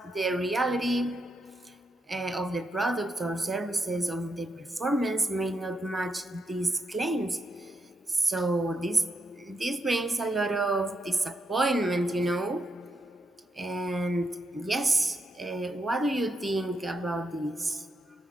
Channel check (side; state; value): both; normal; correlation 0.82